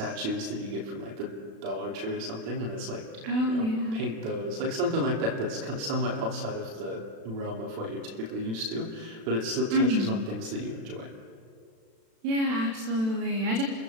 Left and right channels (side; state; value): left; late; 36 ms